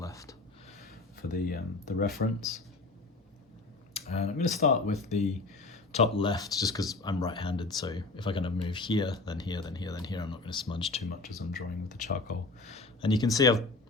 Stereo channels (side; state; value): right; quieter; 3.5 dB